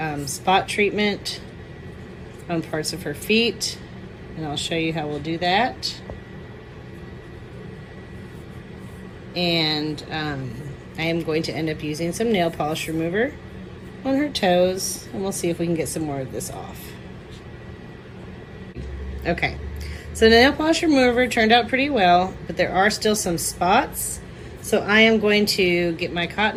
spot treatment on parts of her feet, and I'll show you how we'll do that. And I am going to end up using some nail polish remover on her toes, and we'll see if we can get some more of this off. Okay, so the nail polish remover turned out pretty well, but there are still some spots. So I am going to get my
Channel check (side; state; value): both; identical; correlation 1.00